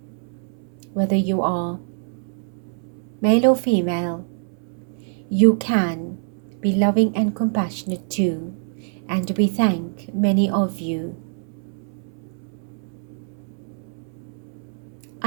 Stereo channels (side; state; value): left; silent; 62 dB below the other